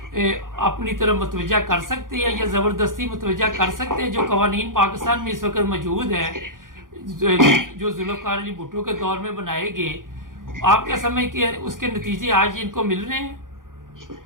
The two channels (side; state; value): left; late; 0.90 ms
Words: اپنی طرف متوجہ کر سکتے ہیں یا زبردستی متوجہ کر سکتے ہیں؟ جو قوانین پاکستان میں اس وقت موجود ہیں، جو ذوالفقار علی بھٹو کے دور میں بنائے گئے، آپ کیا سمجھ کہ اس کے نتیجے آج ان کو مل رہے ہیں؟